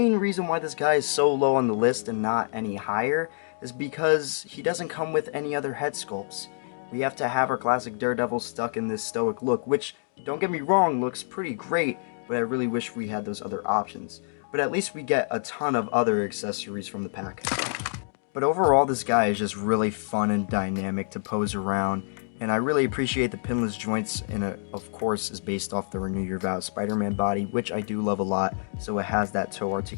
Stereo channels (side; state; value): right; silent; digital silence